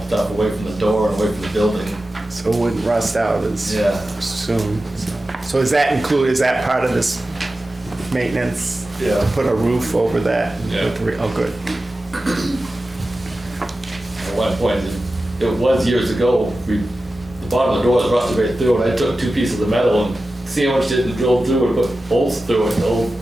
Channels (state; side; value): normal; both; correlation 0.94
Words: stuff away from the door and away from the building. So it wouldn't rust out as Yeah. soon. So is that part of this maintenance? Yeah. Put a roof over that? Yeah. Oh, good. At one point, it was years ago, the bottom of the door was rusted right through, and I took 2 pieces of metal and sandwiched it and drilled through it, put bolts through it